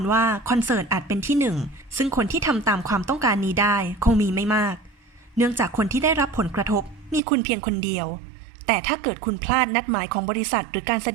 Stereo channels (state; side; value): drops out; left; at 7.2 s